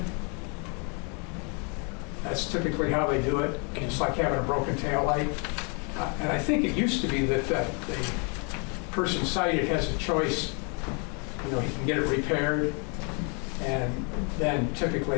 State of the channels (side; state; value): right; quieter; 35.7 dB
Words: That's typically how they do it. It's like having a broken tail light. And I think it used to be that the person cited has a choice. You know, he can get it repaired, and then